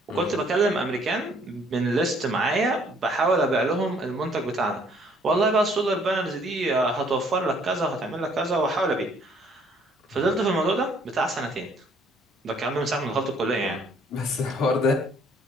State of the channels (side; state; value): both; normal; correlation 0.62